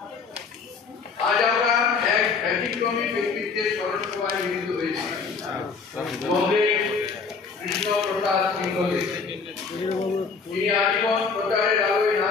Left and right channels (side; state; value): right; quieter; 5.0 dB